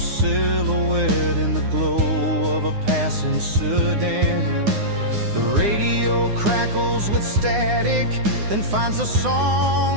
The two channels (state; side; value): late; left; 9.7 ms